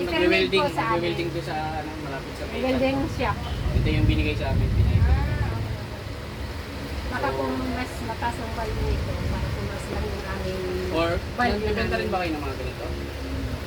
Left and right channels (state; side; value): identical; both; correlation 1.00